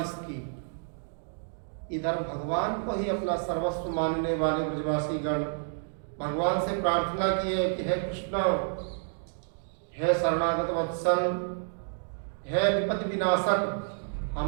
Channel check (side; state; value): left; silent; digital silence